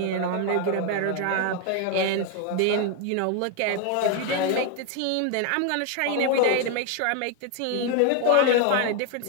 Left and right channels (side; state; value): both; different; correlation 0.01